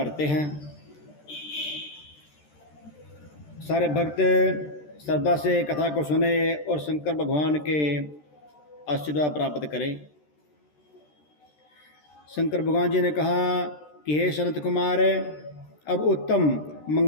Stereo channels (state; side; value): late; right; 13 ms